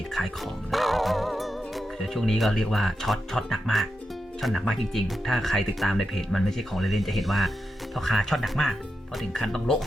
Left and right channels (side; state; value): both; normal; correlation 0.88